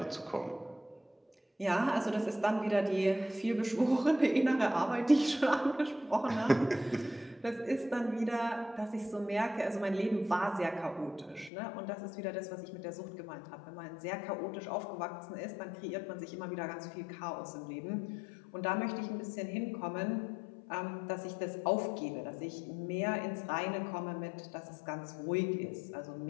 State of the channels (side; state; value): right; drops out; at 11.5 s